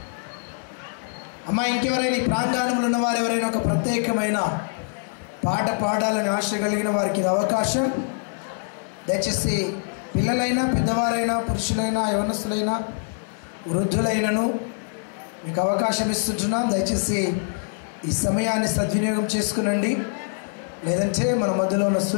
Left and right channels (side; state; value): right; silent; 62 dB below the other